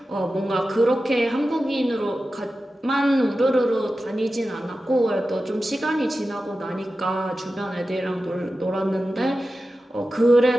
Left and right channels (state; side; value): normal; both; correlation 0.93